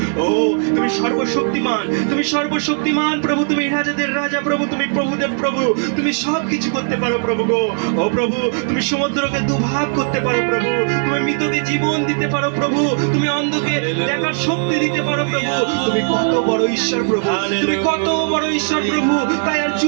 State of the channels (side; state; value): left; silent; digital silence